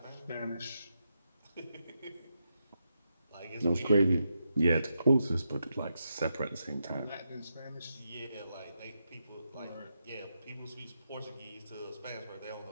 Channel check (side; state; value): both; inverted; correlation -0.85